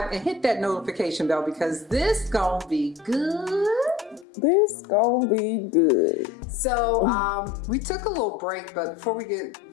and hit that notification bell because this gonna be good. This gonna be good. So, we took a little break, but before we get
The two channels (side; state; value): right; drops out; at 4.2 s